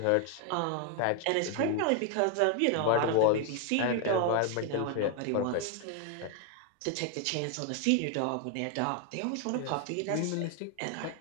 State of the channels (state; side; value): different; both; correlation 0.00